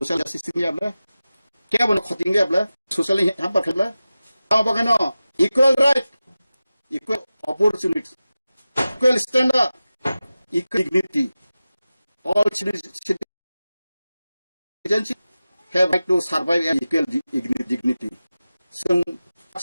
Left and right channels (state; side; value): inverted; both; correlation -0.95